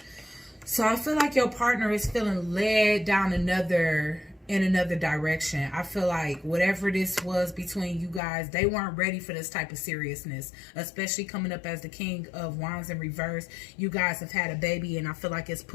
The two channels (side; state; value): right; drops out; at 8.2 s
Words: So I feel like your partner is feeling led down in another direction. I feel like whatever this was between you guys, they weren't ready for this type of seriousness, especially coming up as the King of Wands in reverse. You guys have had a baby, and I feel like it's